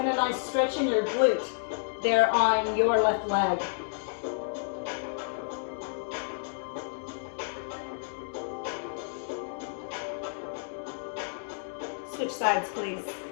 a nice stretch in your glute there on your left leg. Switch sides, please.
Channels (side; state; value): right; silent; digital silence